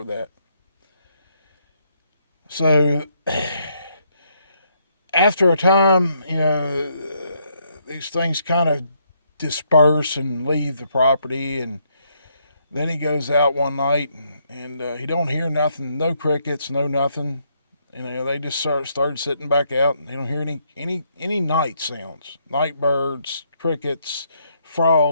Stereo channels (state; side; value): inverted; both; correlation -0.73